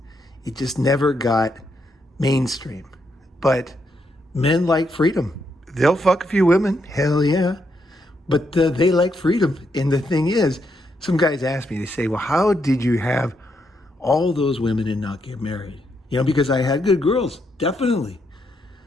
It just never got mainstream. But men like freedom. They'll fuck a few women, hell yeah. But they like freedom. And the thing is, some guys ask me, they say, well, how did you have all those women and not get married? You know, because I had good girls, definitely.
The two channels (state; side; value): normal; both; correlation 0.79